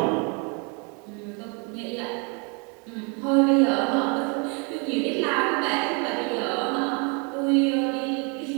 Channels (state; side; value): quieter; left; 34.4 dB